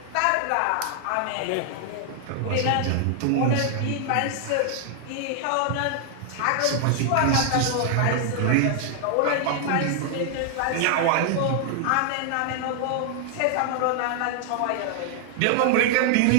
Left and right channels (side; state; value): both; different; correlation 0.00